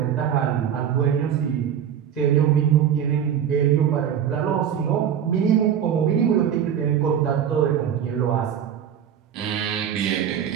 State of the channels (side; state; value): left; quieter; 8.9 dB